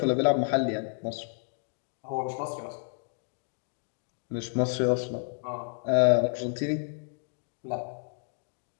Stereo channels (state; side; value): silent; right; digital silence